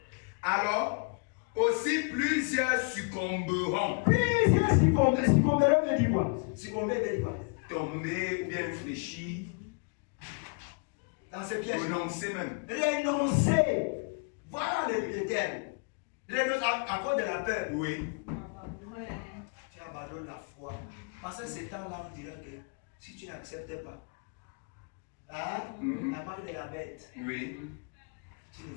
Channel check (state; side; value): quieter; right; 35.9 dB